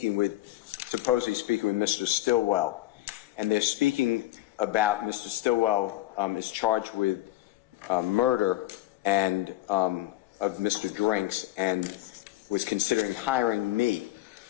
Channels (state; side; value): quieter; right; 16.3 dB